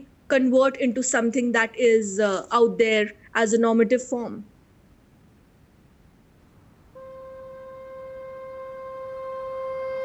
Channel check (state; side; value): identical; both; correlation 1.00